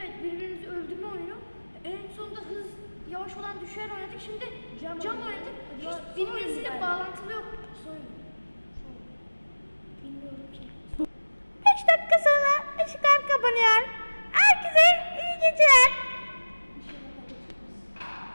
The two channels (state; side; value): inverted; both; correlation -1.00